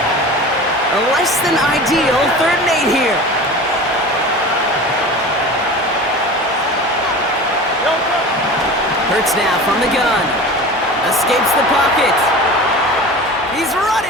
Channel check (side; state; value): both; normal; correlation 0.35